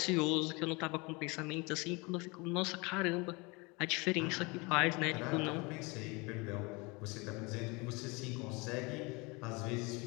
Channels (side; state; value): right; quieter; 27.3 dB